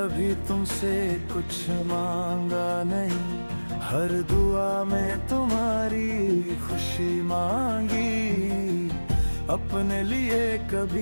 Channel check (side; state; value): both; inverted; correlation -1.00